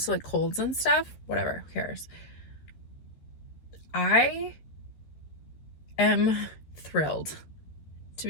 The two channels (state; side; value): late; right; 13 ms